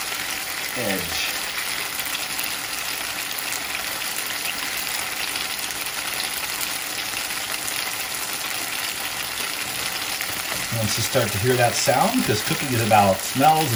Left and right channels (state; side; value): identical; both; correlation 1.00